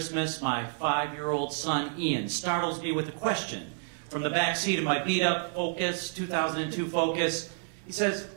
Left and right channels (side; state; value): left; silent; 56 dB below the other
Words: my 5-year-old son Ian startles me with a question from the back seat of my beat-up Focus, 2002 Focus. He says,